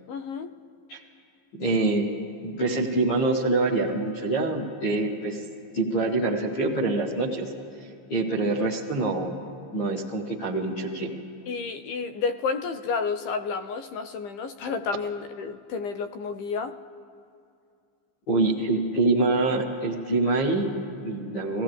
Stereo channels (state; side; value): late; right; 15 ms